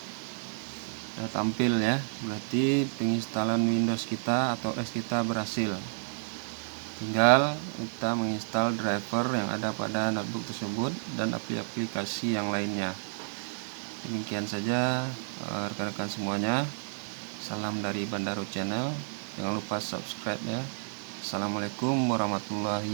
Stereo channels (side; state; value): left; silent; digital silence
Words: sudah tampil ya, berarti penginstalan Windows kita atau OS kita berhasil. Tinggal kita menginstal driver yang ada pada notebook tersebut dan aplikasi yang lainnya. Demikian saja rekan-rekan semuanya. Salam dari Bandaro Channel. Jangan lupa subscribe ya. Assalamualaikum